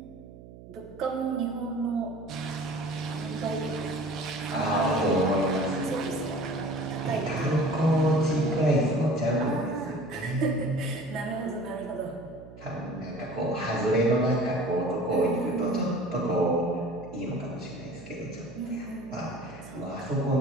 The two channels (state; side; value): noise; right; hum, 17 dB below the sound